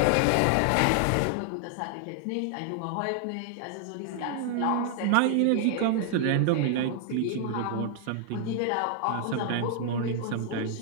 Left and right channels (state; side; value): different; both; correlation 0.00